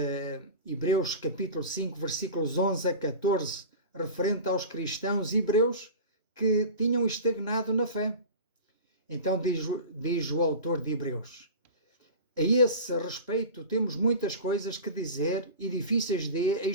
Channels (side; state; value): both; inverted; correlation -0.32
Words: Hebreus capítulo 5, versículos 11 a 14, referente aos cristãos hebreus que tinham estagnado na fé. Então diz o autor de Hebreus: a esse respeito temos muitas coisas que dizer e difíceis de